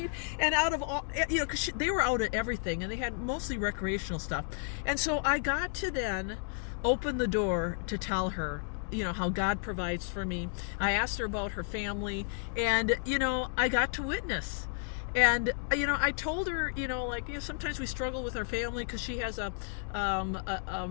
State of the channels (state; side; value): silent; right; 56 dB below the other